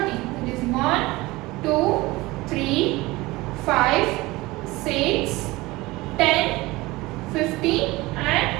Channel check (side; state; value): left; quieter; 20.8 dB